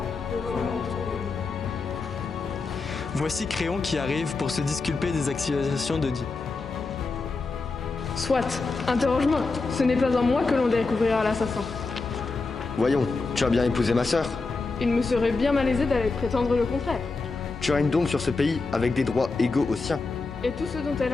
le volant autour de lui. Voici Créon qui arrive pour se disculper des accusations d'Oedipe. Soit, interroge-moi. Ce n'est pas en moi que l'on découvrira l'assassin. Voyons, tu as bien épousé ma sœur. Il me serait bien malaisé d'aller prétendre le contraire. Tu règnes donc sur ce pays avec des droits égaux aux siens. Et tout ce dont elle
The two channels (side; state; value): right; quieter; 3.9 dB